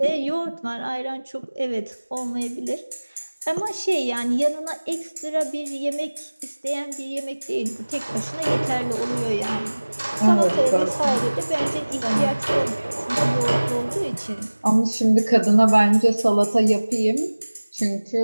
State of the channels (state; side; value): inverted; both; correlation -1.00